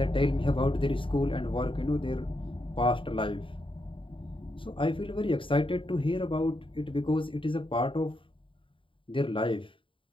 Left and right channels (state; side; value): late; right; 0.25 ms